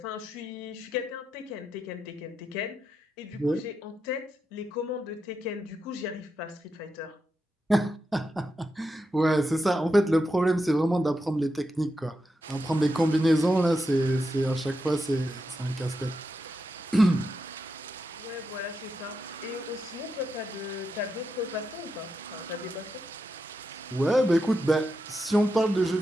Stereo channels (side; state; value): both; normal; correlation 0.86